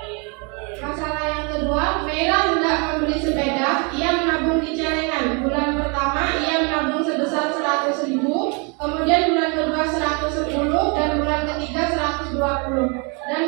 Masalah yang kedua, Mela hendak membeli sepeda. Ia menabung di celengan. Bulan pertama ia menabung sebesar 100.000, kemudian bulan kedua 110, dan bulan ketiga 120, dan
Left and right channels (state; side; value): quieter; left; 33.6 dB